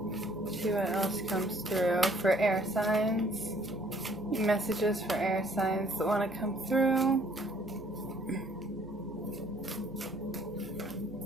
See what else comes through for air signs. Messages for air signs that want to come through.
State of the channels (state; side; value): noise; right; hum, 20 dB below the sound